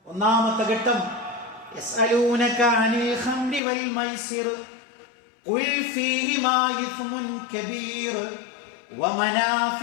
ഒന്നാമത്തെ ഘട്ടം, യസ്അലൂനക അനിൽ ഖംരി വൽ മൈസിർ ഖുൽ ഫീഹിമാ ഇസ്മുൻ കബീർ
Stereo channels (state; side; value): drops out; right; at 3.6 s